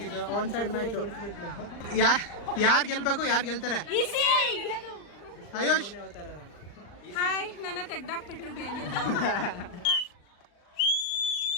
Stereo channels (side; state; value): right; late; 39 ms